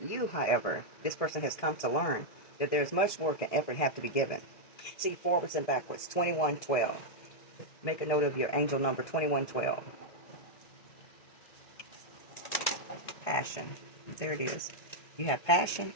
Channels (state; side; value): late; right; 1.6 ms